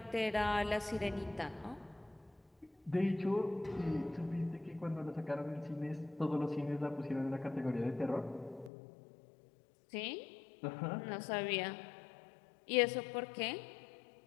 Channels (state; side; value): drops out; right; at 8.7 s